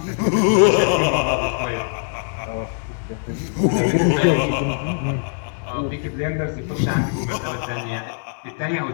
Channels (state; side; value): silent; right; digital silence